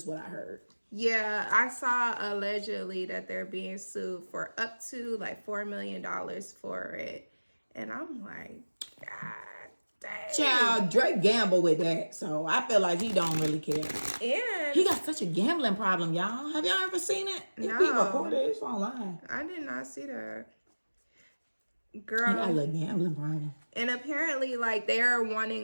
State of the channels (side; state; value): both; inverted; correlation -1.00